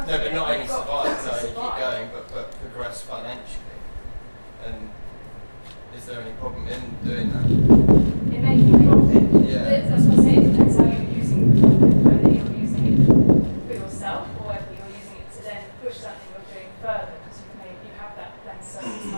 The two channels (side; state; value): both; inverted; correlation -1.00